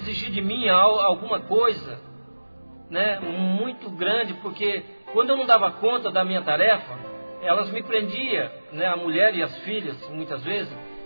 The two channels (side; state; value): both; inverted; correlation -1.00